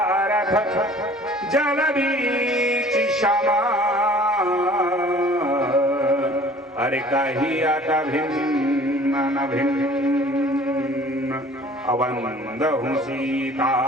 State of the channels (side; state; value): both; normal; correlation 0.50